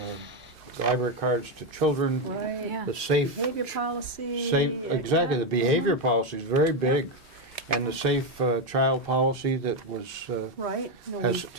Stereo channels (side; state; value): both; normal; correlation 0.07